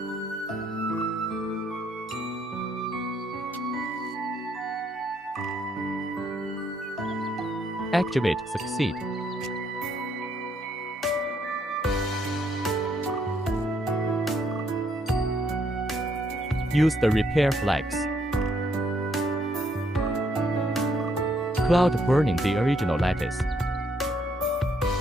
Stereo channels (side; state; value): both; normal; correlation 0.72